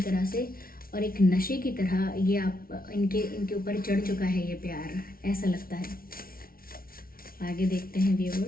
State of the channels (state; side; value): late; right; 0.43 ms